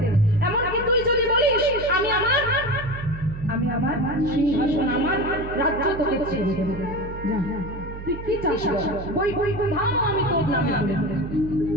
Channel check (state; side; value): noise; right; hum, 10 dB below the sound